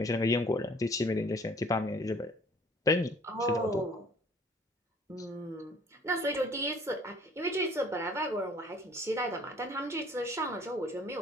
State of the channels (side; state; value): both; normal; correlation 0.55